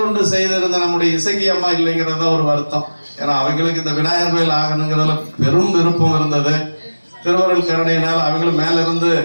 செய்திருந்த நம்முடைய இசைக்கு அம்மா இல்லைங்கிறத ஒரு வருத்தம். ஏன்னா அவங்களுக்கு இந்த விநாயகர் கோயில் ஆகணுங்கிறதுல பெரும் விருப்பம் இருந்தது. திருவருள் கருணையினால் அவங்களும் மேல இருந்து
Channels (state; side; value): inverted; both; correlation -1.00